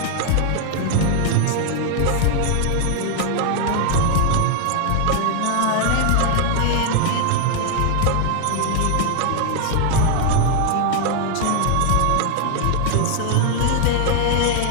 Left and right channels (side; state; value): both; different; correlation 0.00